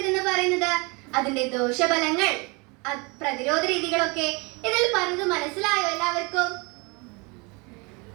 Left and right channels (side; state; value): left; quieter; 28.9 dB